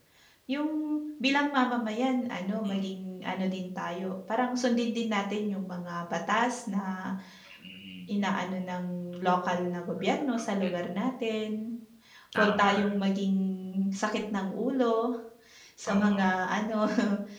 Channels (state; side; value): identical; both; correlation 1.00